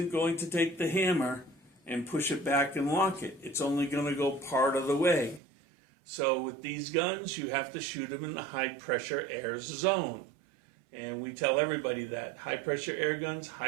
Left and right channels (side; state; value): left; drops out; at 5.4 s